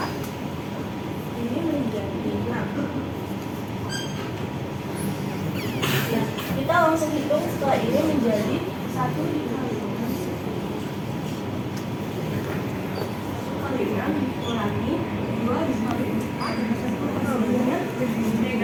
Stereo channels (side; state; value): both; identical; correlation 1.00